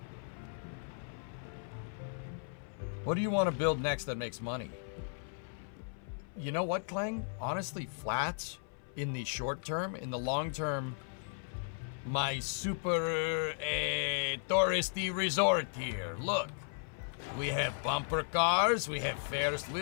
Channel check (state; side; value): silent; right; 54 dB below the other